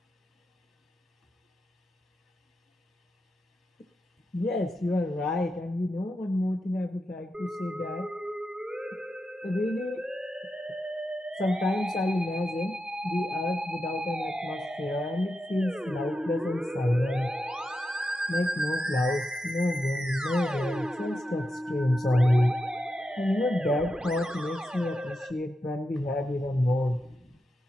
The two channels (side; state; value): both; normal; correlation 0.88